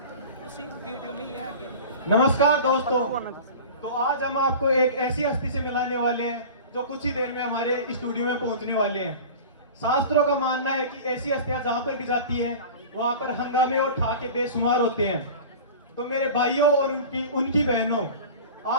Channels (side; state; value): both; inverted; correlation -0.36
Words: उसी वीडियो में ही है आगे। नमस्कार दोस्तों, तो आज हम आपको एक ऐसी हस्ती से मिलाने वाले हैं जो कुछ ही देर में हमारे स्टूडियो में पहुंचने वाले हैं। शास्त्रों का मानना है कि ऐसी हस्तियां जहां पर भी जाती हैं वहां पर हंगामे और ठाके बेशुमार होते हैं। तो मेरे भाइयों और उनकी बहनों,